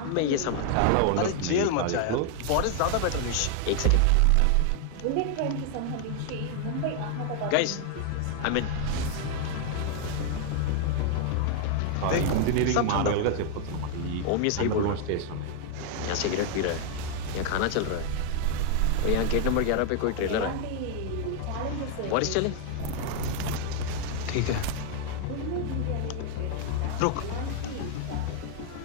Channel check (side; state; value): both; different; correlation 0.00